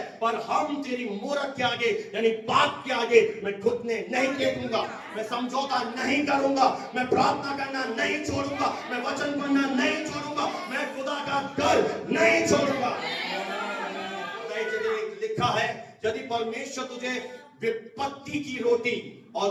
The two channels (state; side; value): identical; both; correlation 1.00